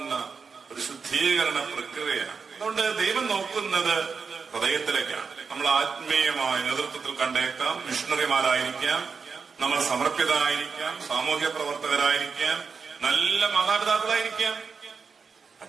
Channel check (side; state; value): left; quieter; 5.3 dB